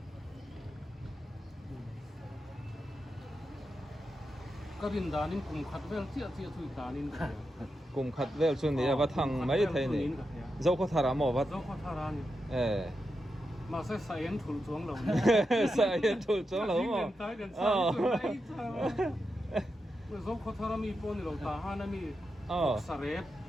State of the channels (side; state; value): both; normal; correlation 0.87